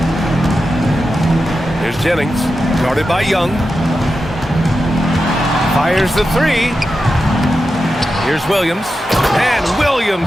Here's Jennings, guarded by Young. Fires the 3. Here's Williams. And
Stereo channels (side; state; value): both; normal; correlation 0.90